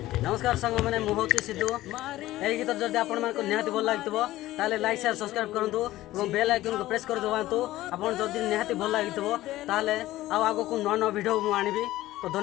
नमस्कार संग मैंने मुहूर्त सिद्धू यही गीत जब आपण मानको निहाती भल लागितबो ताले लाइक शेयर सब्सक्राइब करंतु एवं बेल आइकन को प्रेस कर दबांतु आपण जदि निहाती भल लागितबो ताले आगो को नवा वीडियो मु आनिबी तो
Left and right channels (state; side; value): quieter; right; 16.0 dB